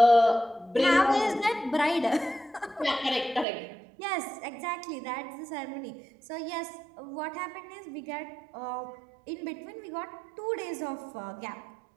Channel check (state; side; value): drops out; left; at 3.5 s